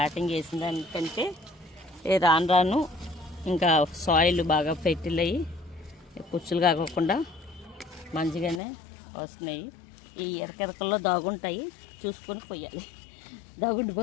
చేసిన దానికంటే రాను ఇంకా సాయిల్ బాగా ఫెర్టిల్ అయ్యి పుచ్చులు కాకోకుండా మంచిగానే వస్తున్నాయి. ఈ ఎరకెరకల్లో దాగుంటాయి, చూసుకొని పోయాలి.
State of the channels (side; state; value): right; drops out; at 8.6 s